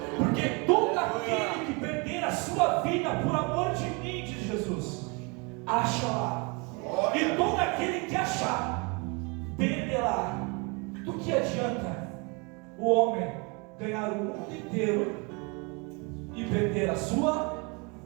Porque todo aquele que perder a sua vida por amor de mim, diz Jesus, achará. E todo aquele que achar, perderá. Do que adianta o homem ganhar o mundo inteiro e perder a sua?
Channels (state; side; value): quieter; left; 30.8 dB